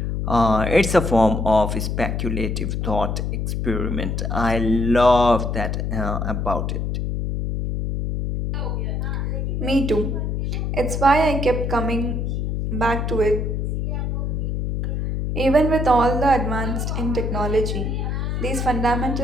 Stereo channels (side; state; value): left; noise; hum, 1 dB below the sound